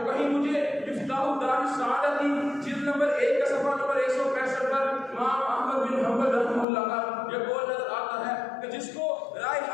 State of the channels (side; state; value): right; drops out; at 6.7 s